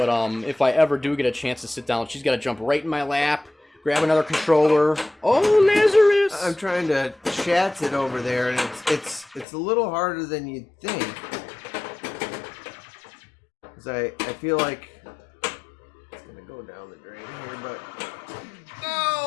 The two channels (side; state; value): right; drops out; at 9.5 s